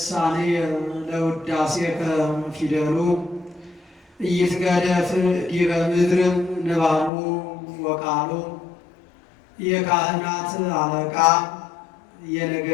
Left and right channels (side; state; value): right; drops out; at 7.1 s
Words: ለውዳሴከ ፊደሉ ኢይትገደፍ ዲበ ምድር ንባቡ ወቃሉ። የካህናት አለቃ